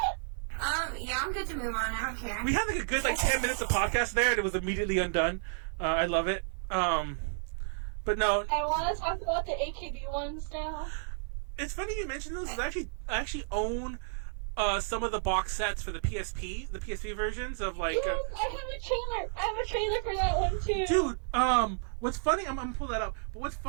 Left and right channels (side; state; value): left; silent; 57 dB below the other